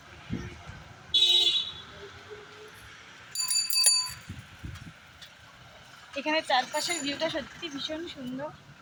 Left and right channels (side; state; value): both; identical; correlation 1.00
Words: এখানে চারপাশের ভিউটা সত্যি ভীষণ সুন্দর।